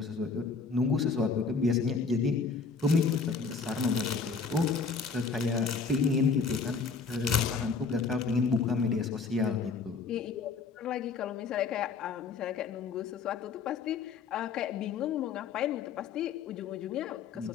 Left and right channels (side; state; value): right; quieter; 5.0 dB